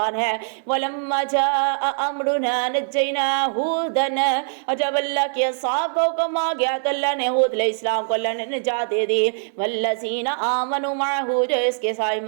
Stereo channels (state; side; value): silent; left; digital silence